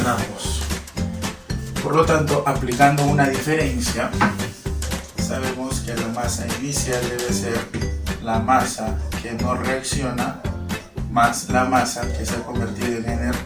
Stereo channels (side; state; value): both; identical; correlation 1.00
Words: Por lo tanto, aplicando una diferencia, sabemos que la masa inicial debe ser la masa que no reacciona más la masa que se ha convertido en